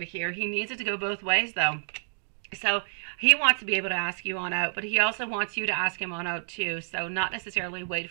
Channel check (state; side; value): silent; left; digital silence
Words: here, he needs it to go both ways though. So he wants to be able to ask you on out, but he also wants you to ask him on out too. So not necessarily wait